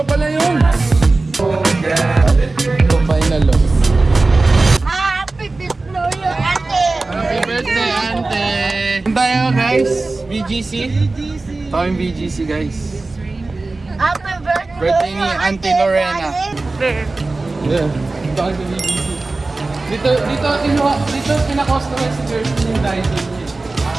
pala yun! Ito final loss. Happy birthday, Ate! Happy birthday, Ante! Tayo guys, BGC. Ito yung BGC guys. Happy birthday, Birthday ni Auntie Lorena. Yeah. Ito kayo sa BGC. Dito pina-customize si Kirsten yung Dyson niya.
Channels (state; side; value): quieter; left; 3.4 dB